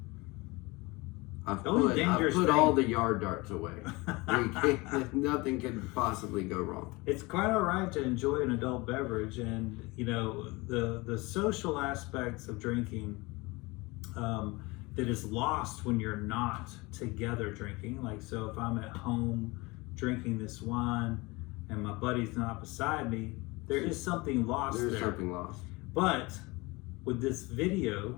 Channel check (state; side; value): quieter; right; 24.0 dB